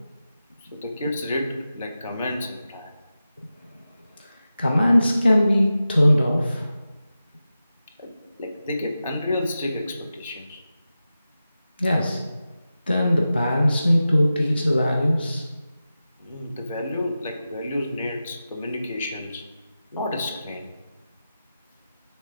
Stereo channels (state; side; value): inverted; both; correlation -0.93